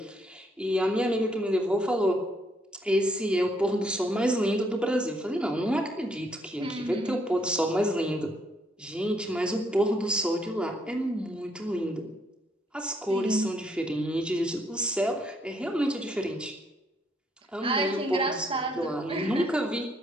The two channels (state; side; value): normal; both; correlation 0.71